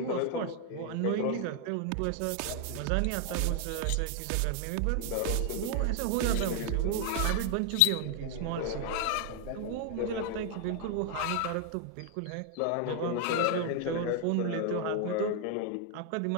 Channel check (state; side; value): different; both; correlation 0.00